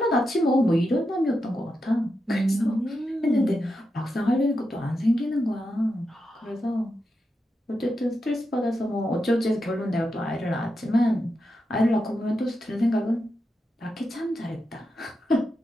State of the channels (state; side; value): normal; both; correlation 0.87